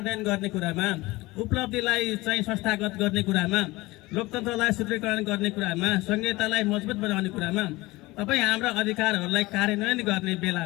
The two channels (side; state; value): right; quieter; 20.6 dB